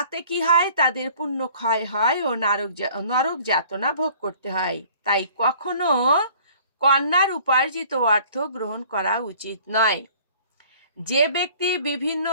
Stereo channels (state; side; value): inverted; both; correlation -0.52